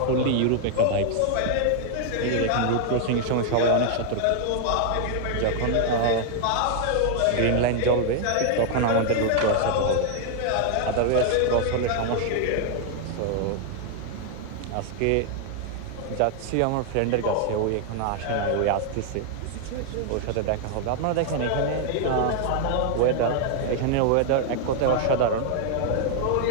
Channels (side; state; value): both; different; correlation 0.00